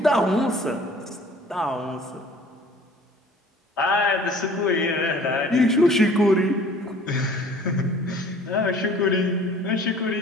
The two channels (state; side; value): normal; both; correlation 0.50